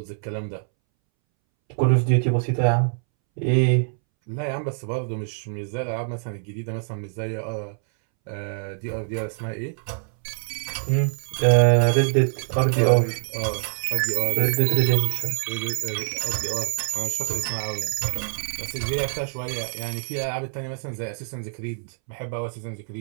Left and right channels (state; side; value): silent; left; 62 dB below the other